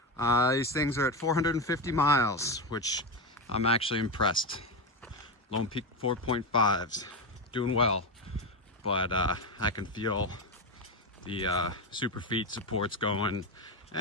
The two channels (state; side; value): normal; both; correlation 0.14